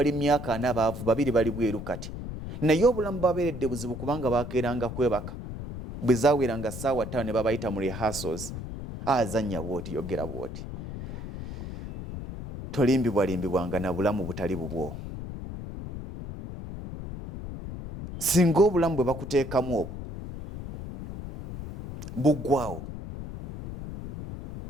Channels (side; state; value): left; noise; rumble, 9 dB below the sound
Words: myaka 4 abaavu 2 bali bweru kati naye obulamu babeeredde buzibu kubanga bakeeranga kwebaka bwe zaaweranga ssaawa 5 ne babayita mu rehearsals azannya bwoti yogera bwoti tolimbibwalimbibwanga na bulamu butali bubwo singa obulamu bwe bakuteekamu obwo buggwawo